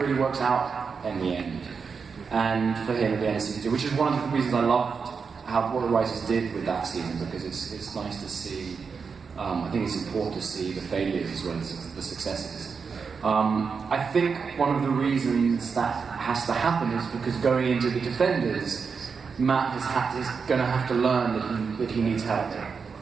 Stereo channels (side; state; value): left; quieter; 5.5 dB